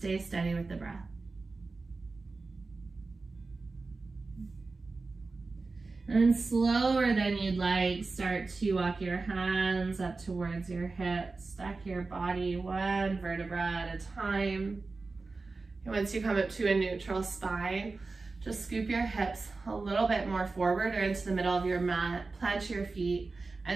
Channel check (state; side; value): quieter; left; 3.8 dB